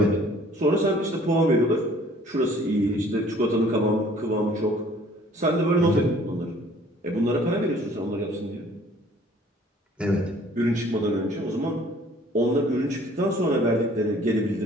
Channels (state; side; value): normal; both; correlation 0.55